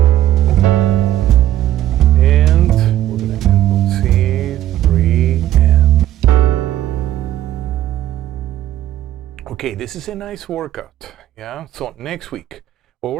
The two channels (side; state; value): left; quieter; 12.9 dB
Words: Okay, this is a nice workout, yeah? So next week, what